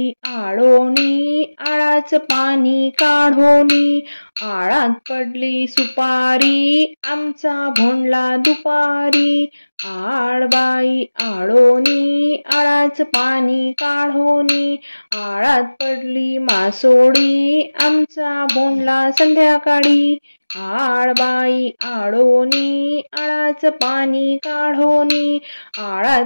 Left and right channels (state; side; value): inverted; both; correlation -1.00